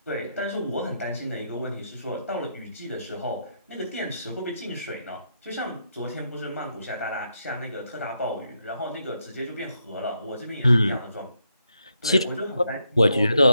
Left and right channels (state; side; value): inverted; both; correlation -0.80